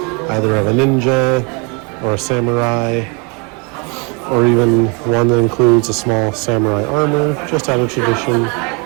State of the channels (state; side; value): quieter; left; 32.5 dB